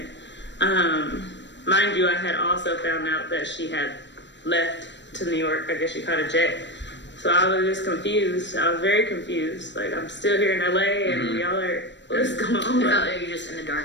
Mind you, I had also found out that she had left to New York. I guess she caught a jet. So I was just confused. I was very confused. Like, I'm still here in LA and y'all are, what's going on? You're just in the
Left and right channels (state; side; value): late; right; 0.53 ms